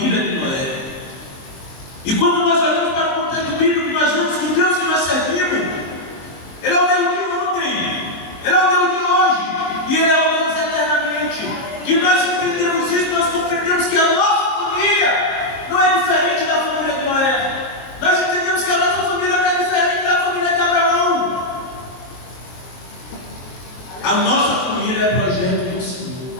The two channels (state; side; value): late; right; 23 ms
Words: de Noé. E quando nós olhamos para o contexto bíblico, nós vemos que o Deus que nós servimos, Ele é o Deus de ontem, Ele é o Deus de hoje, e Ele é o Deus eternamente. Que nós entendemos isso, nós compreendemos que a nossa família não é diferente da família de Noé. Nós entendemos que a nossa família não é diferente da família de Abraão. A nossa família é projeto do Senhor.